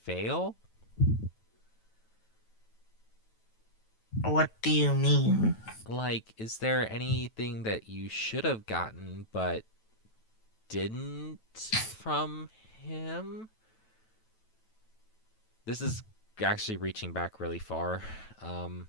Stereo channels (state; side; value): late; right; 9.2 ms